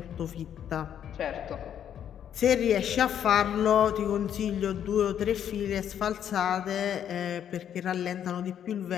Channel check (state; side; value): quieter; right; 9.5 dB